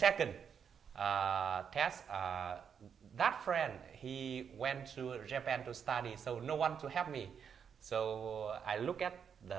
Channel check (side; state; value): left; quieter; 7.3 dB